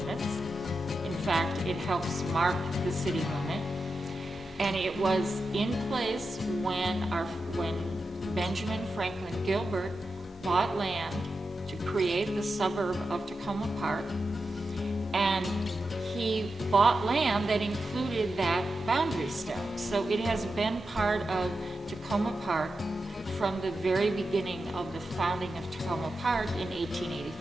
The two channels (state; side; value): normal; both; correlation 0.89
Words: In fact, it helps mark the city limit. And it was in place when Benjamin Franklin Gilbert bought land to create the suburb of Takoma Park. And he bought land that included that boundary stone. So it has been part of Takoma Park from the very beginning of the founding of Takoma Park in